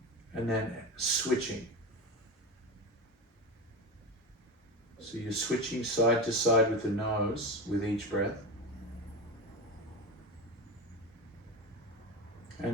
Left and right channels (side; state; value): both; normal; correlation 0.22